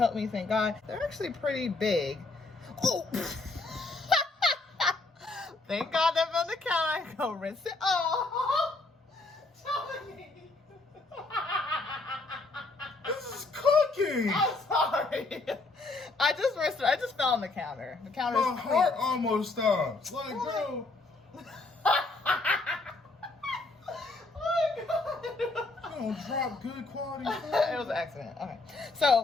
me, thank God. They're actually pretty big. Oh! Thank God they're on the counter. I go rinse it. Oh! Dominique! This is cooking. I'm sorry. I just rinsed it. I just fell on the counter. The counter is My heart almost stopped. Like, bro. Don't drop good quality food. It was an accident. Okay.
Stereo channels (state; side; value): quieter; right; 3.4 dB